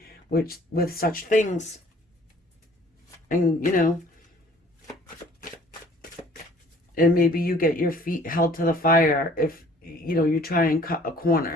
with such things? And, and maybe you get your feet held to the fire if you know, you try and cut a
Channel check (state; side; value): normal; both; correlation 0.55